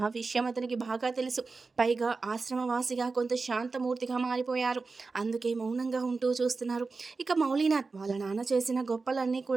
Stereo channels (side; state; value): left; quieter; 4.1 dB